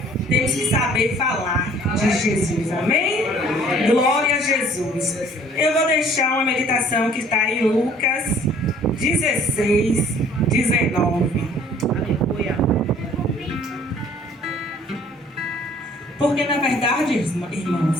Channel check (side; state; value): both; normal; correlation 0.55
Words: temos que saber falar de Jesus. Amém? Glória a Jesus. Eu vou deixar uma meditação que está em Lucas 16, 19. Aleluia. Porque na verdade,